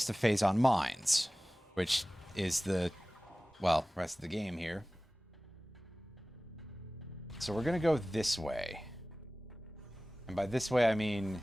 of phase on mines, which is the, well, rest of the game here. So we're going to go this way. And by this way, I mean,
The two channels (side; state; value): both; normal; correlation 0.97